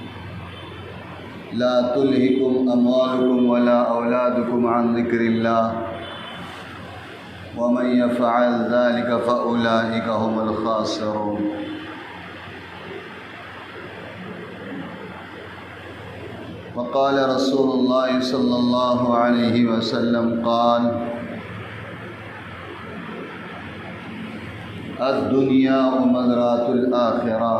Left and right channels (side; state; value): both; identical; correlation 1.00